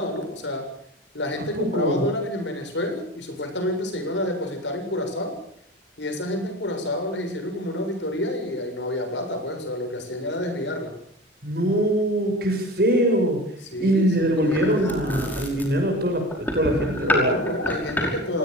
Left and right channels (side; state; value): both; normal; correlation 0.33